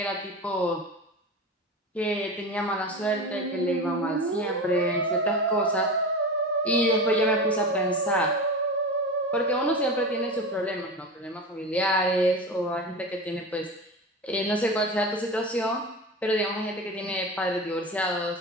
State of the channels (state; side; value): normal; both; correlation 0.27